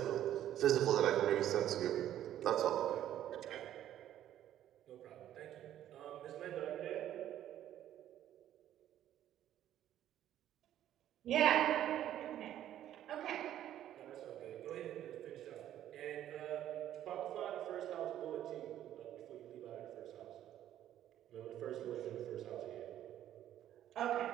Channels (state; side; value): quieter; left; 11.8 dB